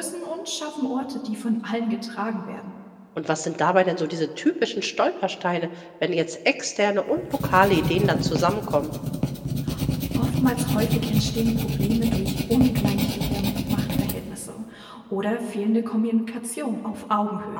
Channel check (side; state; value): both; identical; correlation 1.00